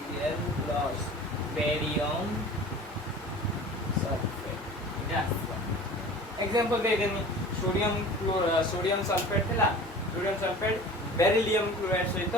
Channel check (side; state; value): both; normal; correlation 0.40